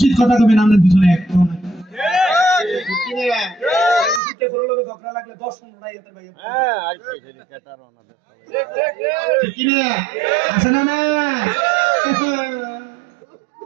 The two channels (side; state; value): left; drops out; at 4.2 s